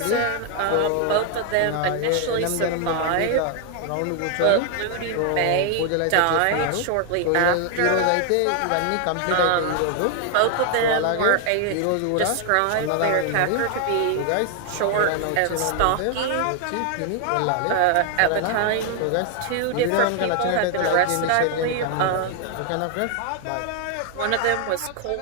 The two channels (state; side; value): different; both; correlation 0.00